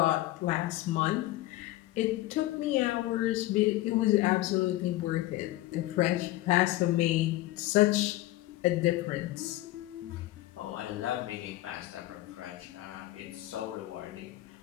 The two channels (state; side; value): quieter; right; 16.8 dB